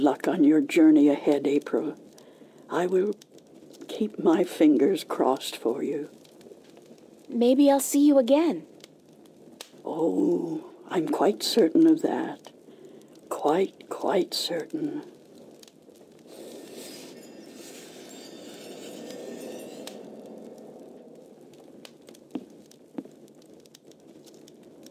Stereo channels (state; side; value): identical; both; correlation 1.00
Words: on your journey ahead, April. I will keep my fingers crossed for you. maybe I'll see you again. Oh, I'm quite certain of that. Quite certain.